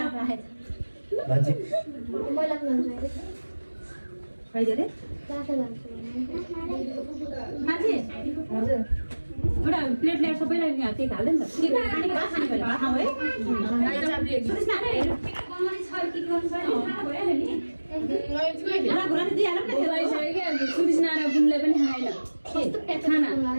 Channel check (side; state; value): both; inverted; correlation -1.00